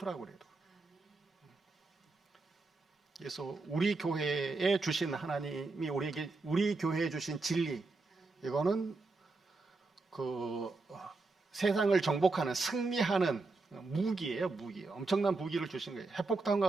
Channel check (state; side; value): quieter; left; 3.7 dB